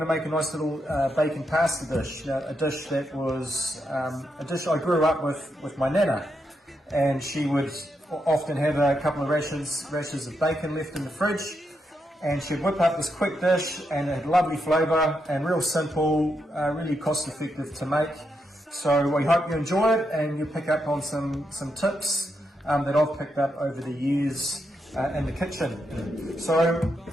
to make a nice little bacon pasta dish. Now, a dish that was a dish I grew up with my nana, and she would often have a couple of rashers of bacon left in the fridge, and she'd whip up this quick dish, and it had lovely flavour and real simple, really cost effective to make. So we hope you enjoy it and you pick up on some tips that I've picked up over the years in the kitchen. So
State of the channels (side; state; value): both; normal; correlation 0.82